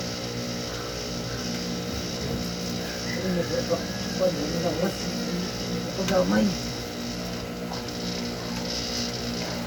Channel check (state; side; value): identical; both; correlation 1.00